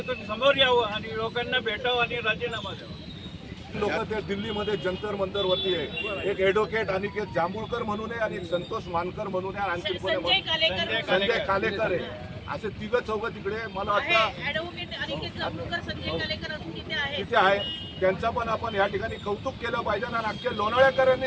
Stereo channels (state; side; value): identical; both; correlation 1.00